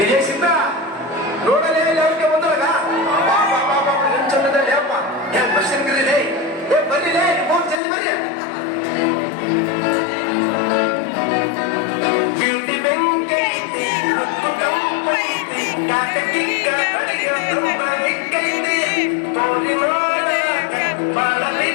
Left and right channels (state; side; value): drops out; right; at 7.8 s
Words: ಸಿದ್ಧ ನೋಡಲೇ ಅವ್ರಿಗೆ ಬಂದಾಗ ಚಂದದಲ್ಲಿ ಅಪ್ಪ ದರ್ಶನ್ ಕರೀಲೇ ಬರ್ಲಿಲೇ ಜಲ್ದಿ ಬರ್ರಿ. ಬ್ಯೂಟಿ ಬೆಂಕಿ